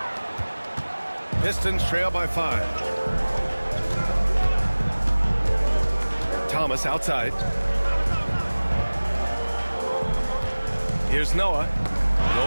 Pistons trail by 5. Thomas outside. Here's Noah.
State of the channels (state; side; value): inverted; both; correlation -1.00